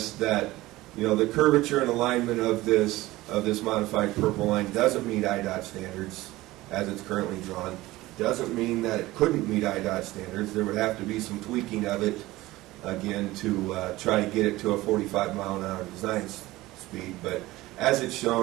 that the curvature and alignment of this modified purple line doesn't meet IDOT standards as it's currently drawn. Doesn't mean that it couldn't meet IDOT standards. There would have to be some tweaking of it, again, to try to get it to a 45-mile-an-hour design speed. But as it's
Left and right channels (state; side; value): quieter; left; 18.2 dB